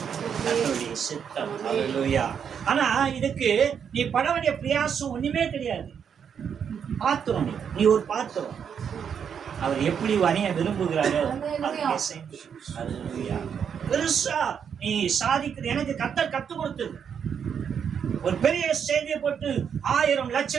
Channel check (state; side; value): quieter; left; 7.5 dB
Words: கர்த்தருடைய சித்தம். ஹல்லேலூயா. ஆனா இதுக்கு நீ பட வேண்டிய பிரயாசம் ஒண்ணுமே கிடையாது. பாத்திரம், நீ ஒரு பாத்திரம். அவர் எப்படி வரைய விரும்புகிறாரோ பெருசா நீ சாதிக்கிறது. எனக்கு கர்த்தர் கத்துக் கொடுத்தது. ஒரு பெரிய செய்தியை போட்டு 1000